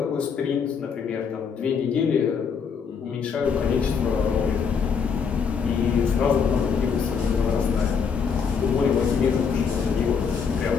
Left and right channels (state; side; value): quieter; right; 6.2 dB